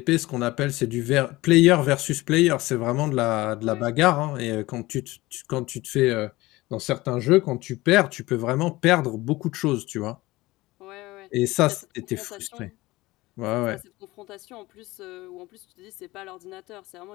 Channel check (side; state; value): right; quieter; 19.7 dB